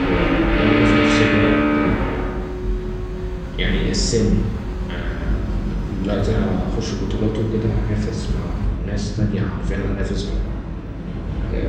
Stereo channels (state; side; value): identical; both; correlation 1.00